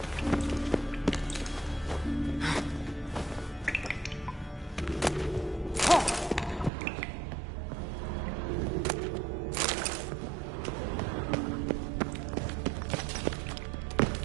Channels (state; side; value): drops out; left; at 6.7 s